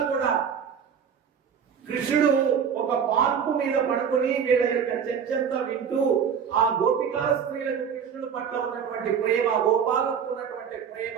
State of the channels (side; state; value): left; quieter; 7.3 dB